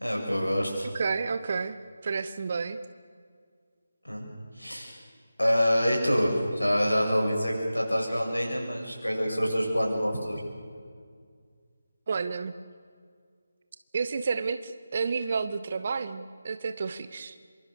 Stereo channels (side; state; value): both; inverted; correlation -0.94